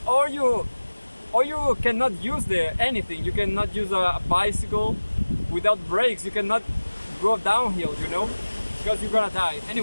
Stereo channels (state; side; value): inverted; both; correlation -1.00